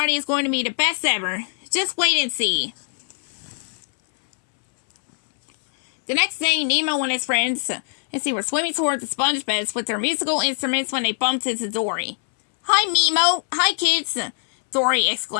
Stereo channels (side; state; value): right; silent; 64 dB below the other